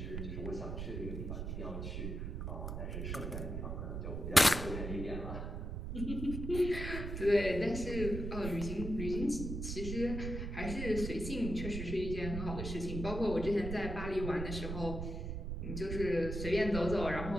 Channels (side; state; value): right; noise; rumble, 4 dB below the sound